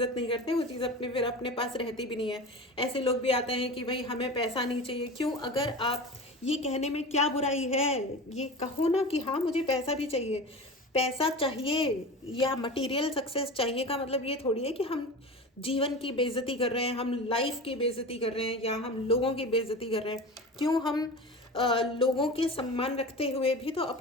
नहीं करते वो चीज़ फिर अपने पास रहती भी नहीं है। ऐसे लोग भी आते हैं कि भाई हमें पैसा नहीं चाहिए। क्यों? अगर आप ये कहने में क्या बुराई है, ये कहो ना कि हाँ मुझे पैसा भी चाहिए। पैसा चाहिए या मटेरियल सक्सेस चाहिए का मतलब ये थोड़ी है कि हम जीवन की बेइज्जती कर रहे हैं, हम लाइफ की बेइज्जती कर रहे हैं, या हम लोगों की बेइज्जती कर रहे हैं। क्यों? हम लोगों के सम्मान रखते हुए भी तो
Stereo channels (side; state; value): both; normal; correlation 0.31